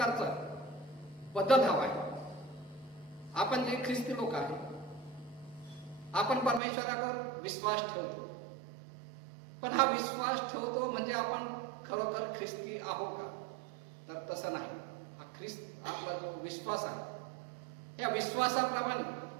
बदल हवा आहे. आपण जे ख्रिस्ती लोक आहे आपण परमेश्वरावर विश्वास ठेवतो पण हा विश्वास ठेवतो म्हणजे आपण खरोखर ख्रिस्ती आहोत का तर तसं नाही. हा ख्रिस्त आपला जो विश्वास आहे या विश्वासाप्रमाणे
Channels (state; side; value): drops out; left; at 6.6 s